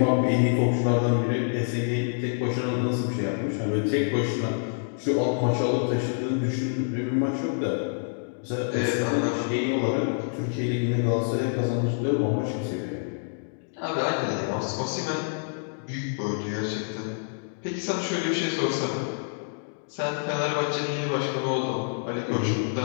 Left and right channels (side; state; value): right; silent; digital silence